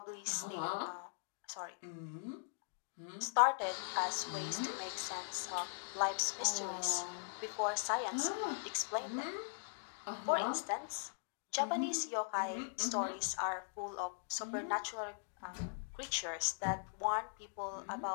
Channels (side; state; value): right; silent; digital silence